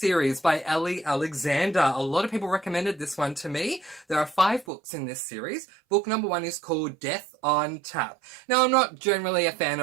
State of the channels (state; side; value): drops out; left; at 4.7 s